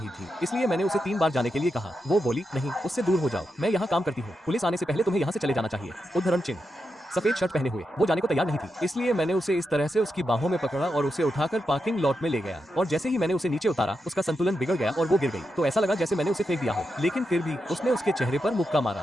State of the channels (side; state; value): both; normal; correlation 0.86